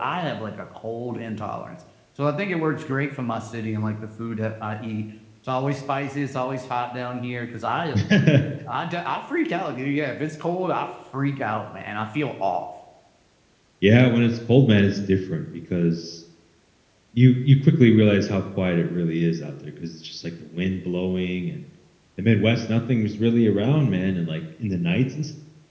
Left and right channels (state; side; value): identical; both; correlation 1.00